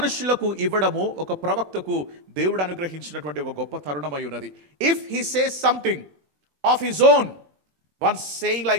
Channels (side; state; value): left; late; 20 ms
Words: ఇవ్వడము ఒక ప్రవక్తకు దేవుడు అనుగ్రహించినటువంటి ఒక గొప్ప తరుణమై ఉన్నది. If he says something of his own, once saying